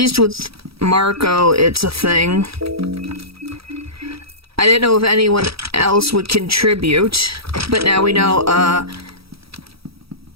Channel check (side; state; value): left; late; 0.76 ms